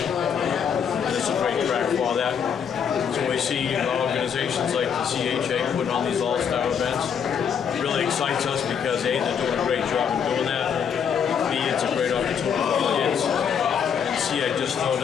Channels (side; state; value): right; quieter; 7.4 dB